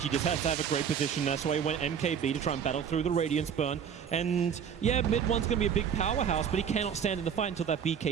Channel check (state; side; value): quieter; left; 7.7 dB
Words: He just has to have a great position. That's why he went MKB to try and battle through the Radiance Burn. And yeah, mid one's going to be a big powerhouse, but he cannot stand in the fight until that